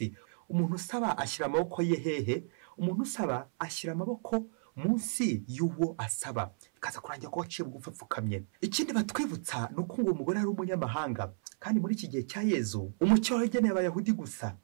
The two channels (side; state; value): left; silent; 56 dB below the other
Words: Umuntu usaba ashyira amaboko ye hehe? Umuntu usaba ashyira amaboko munsi y'uwo asaba, bikaza kurangira ko waciye bugufi apfukamye. Ikindi batwibutsa ni uko ngo umugore ari umunyamahanga, kandi muri iki gihe cya Yezu umucyo wageneye Abayahudi gusa,